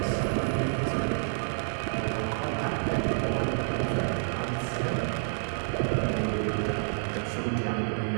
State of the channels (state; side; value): silent; left; digital silence